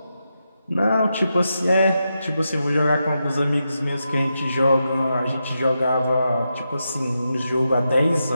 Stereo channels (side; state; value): both; inverted; correlation -0.87